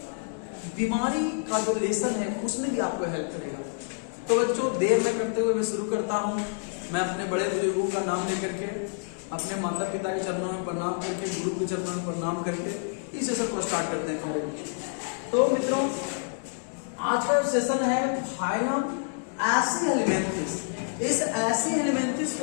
बीमारी का जो लेसन है उसमें भी आपको हेल्प करेगा। तो बच्चों, देर न करते हुए मैं शुरू करता हूँ। मैं अपने बड़े बुजुर्गों का नाम लेकर के, अपने माता पिता के चरणों में प्रणाम करके, गुरु के चरणों में प्रणाम करके इस सेशन को स्टार्ट करते हैं प्यारे बच्चों। तो मित्रों, आज का सेशन है फाइलम एसी हेलिमेंथिस। इस एसी हेलिमेंथिस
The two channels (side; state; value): right; silent; 59 dB below the other